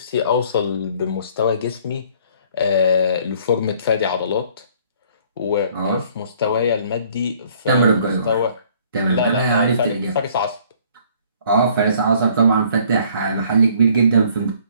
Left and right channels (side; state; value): both; inverted; correlation -0.58